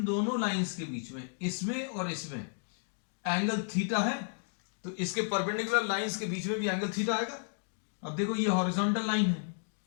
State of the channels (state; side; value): silent; right; digital silence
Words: दोनों लाइंस के बीच में, इसमें और इसमें एंगल थीटा है, तो इसके परपेंडिकुलर लाइंस के बीच में भी एंगल थीटा आएगा। अब देखो ये हॉरिजॉन्टल लाइन है,